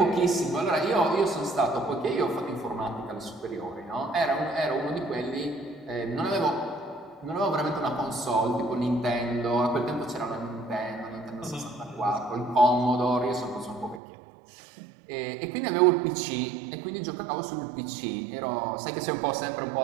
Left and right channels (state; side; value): drops out; left; at 14.0 s